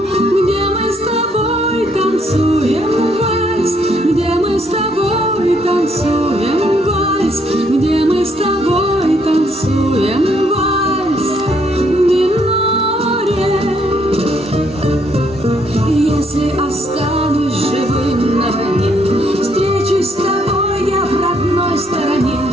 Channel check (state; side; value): normal; both; correlation 0.70